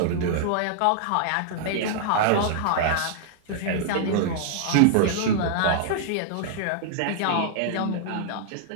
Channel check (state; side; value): different; both; correlation -0.01